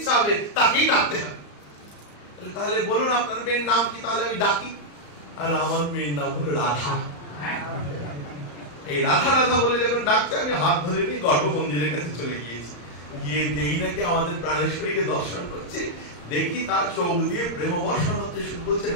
হবে তাকেই ডাকতে হবে। তাহলে বলুন আপনার মেয়ের নাম কি, তাহলে আমি ডাকি। আর আমার মেয়ের নাম হলো রাধা। এই রাধা রাধা বলে যখন ডাকছে, আমি হাত ধরে নিয়ে গর্ভ মন্দিরের কাছে চলে গিয়েছি। গিয়ে দেখি নাকি আমাদের প্রাণেশ্বরীকে দর্শন করছে। দেখি তার চোখ দিয়ে প্রেম বর্ষণ হচ্ছে, শুরু করছে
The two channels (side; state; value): right; late; 34 ms